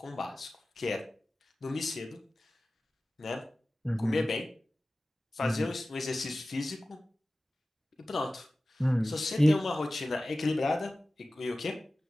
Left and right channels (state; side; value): normal; both; correlation 0.96